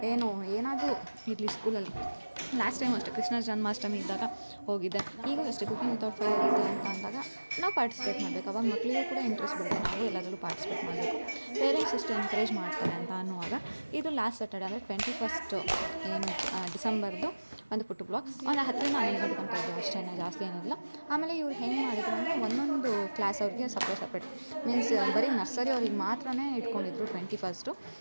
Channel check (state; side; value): inverted; both; correlation -1.00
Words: ಏನಾದರೂ ಇರಲಿ ಸ್ಕೂಲಲ್ಲಿ. ಲಾಸ್ಟ್ ಟೈಮ್ ಅಷ್ಟೇ ಕೃಷ್ಣ ಜನ್ಮಾಷ್ಟಮಿ ಇದ್ದಾಗ ಹೋಗಿದ್ದೆ. ಈಗೂ ಅಷ್ಟೇ ಕುಕಿಂಗ್ ವಿತೌಟ್ ಫೈರ್ ಇದೆ ಅಂತ ಅಂದಾಗ ನಾವು ಪಾರ್ಟಿಸಿಪೇಟ್ ಮಾಡಬೇಕು. ಅವಾಗ ಮಕ್ಕಳಿಗೂ ಕೂಡ ಇಂಟ್ರೆಸ್ಟ್ ಬರುತ್ತೆ, ನಾವು ಎಲ್ಲದರಲ್ಲೂ ಪಾರ್ಟಿಸಿಪೇಟ್ ಮಾಡಬೇಕು. ಪೇರೆಂಟ್ಸ್ ಎಷ್ಟು ಎನ್ಕರೇಜ್ ಮಾಡ್ತಾರೆ ಅಂತ ಅನ್ನುವಾಗ ಇದು ಲಾಸ್ಟ್ ಸ್ಯಾಟರ್ಡೆ ಅಂದರೆ 21 ಏನು ಡಿಸೆಂಬರ್ದು ಒಂದು ಪುಟ್ಟು ಬ್ಲಾಗ್. ಒಂದು 10ರಿಂದ 11 ಗಂಟೆ ತನಕ ಇದೆ ಅಷ್ಟೇ, ಜಾಸ್ತಿ ಏನಿಲ್ಲ. ಆಮೇಲೆ ಇವ್ರು ಹೆಂಗೆ ಮಾಡಿದ್ರು ಅಂದರೆ ಒಂದೊಂದು ಕ್ಲಾಸ್ ಅವ್ರಿಗೆ ಸಪ್ರೇಟ್ ಮೀನ್ಸ್ ಬರೀ ನರ್ಸರಿ ಅವ್ರಿಗೆ ಮಾತ್ರ ಇಟ್ಕೊಂಡಿದ್ರು 21.